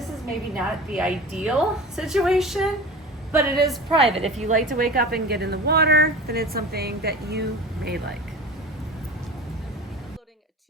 is maybe not the ideal situation, but it is private. If you like to wake up and get in the water, then it's something that you may like. Uploading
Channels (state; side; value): normal; both; correlation 0.35